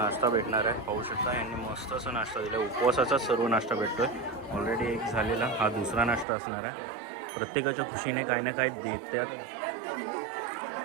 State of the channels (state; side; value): drops out; left; at 6.2 s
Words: भेटणार आहे. पाहू शकता यांनी मस्त असं नाश्ता दिला. उपवासाचा सर्व नाश्ता भेटतोय. ऑलरेडी एक झालेला, हा दुसरा नाश्ता असणार आहे. प्रत्येकाच्या खुशीने काही ना काही देतात.